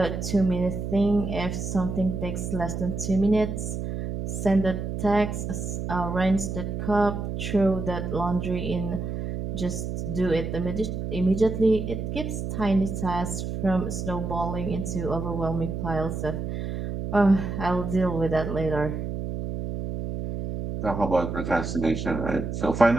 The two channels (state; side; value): noise; right; hum, 4 dB below the sound